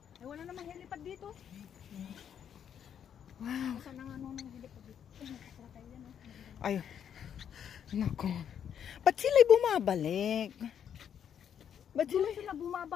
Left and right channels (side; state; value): right; quieter; 8.7 dB